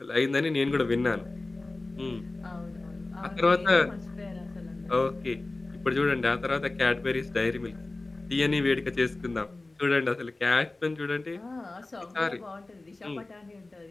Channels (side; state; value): right; quieter; 3.1 dB